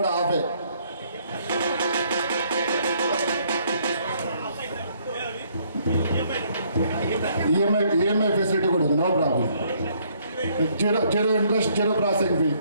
హాఫే. ఈఎంఐ ఫెసిలిటీ కూడా ఉంది, no problem. Zero interest, zero processing fee.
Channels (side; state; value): both; inverted; correlation -0.67